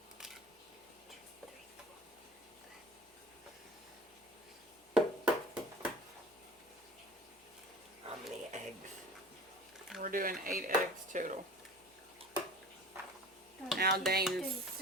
How many eggs? We're doing 8 eggs total. Now Dane's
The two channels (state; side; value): normal; both; correlation 0.41